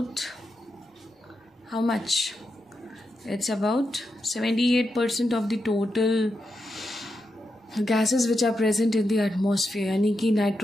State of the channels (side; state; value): both; normal; correlation 0.86